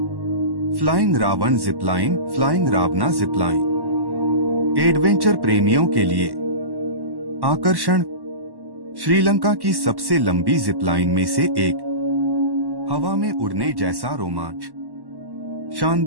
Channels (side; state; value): left; late; 1.1 ms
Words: फ्लाइंग रावण जिपलाइन, फ्लाइंग रावना जिपलाइन। एडवेंचर प्रेमियों के लिए। आकर्षण, श्रीलंका की सबसे लंबी जिपलाइन में से एक। हवा में उड़ने जैसा रोमांच।